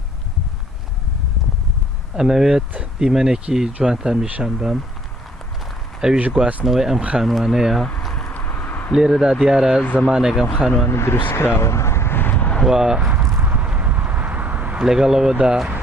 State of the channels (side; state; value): both; normal; correlation 0.59